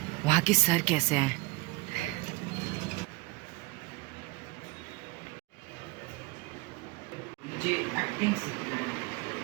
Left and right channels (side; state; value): left; quieter; 23.6 dB